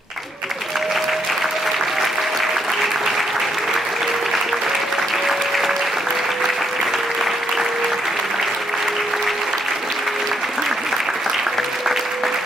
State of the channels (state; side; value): normal; both; correlation 0.75